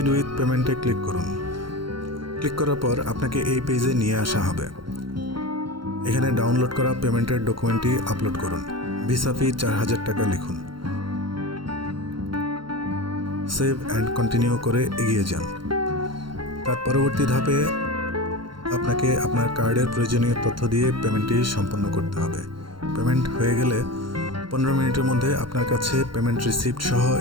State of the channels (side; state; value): left; late; 0.73 ms